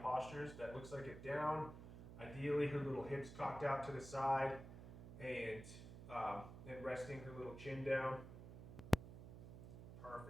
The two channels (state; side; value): noise; right; hum, 12 dB below the sound